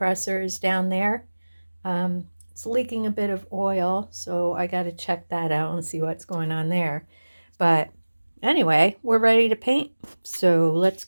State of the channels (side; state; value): both; inverted; correlation -1.00